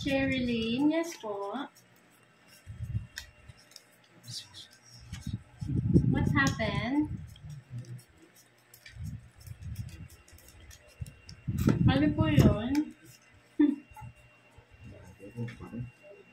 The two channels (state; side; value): identical; both; correlation 1.00